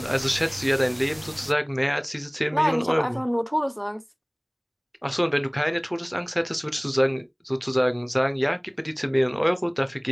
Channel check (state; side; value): identical; both; correlation 1.00